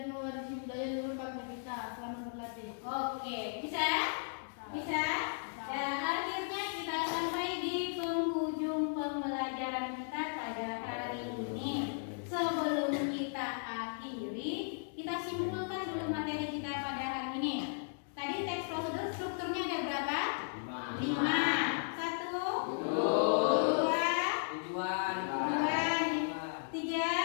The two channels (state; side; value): silent; right; digital silence